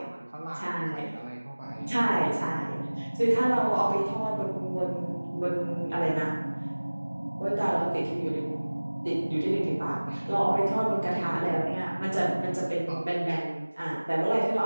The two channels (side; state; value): both; inverted; correlation -1.00